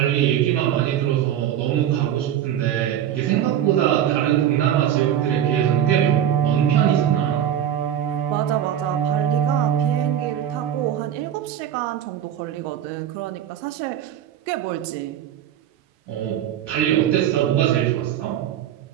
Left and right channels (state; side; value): quieter; left; 10.4 dB